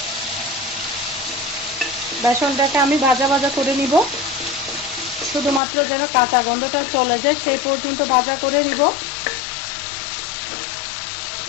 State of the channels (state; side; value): drops out; right; at 5.6 s